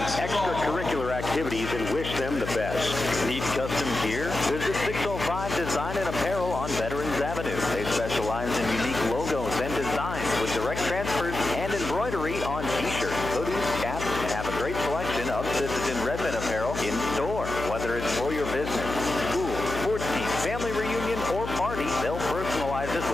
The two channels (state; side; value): noise; left; hum, 7 dB below the sound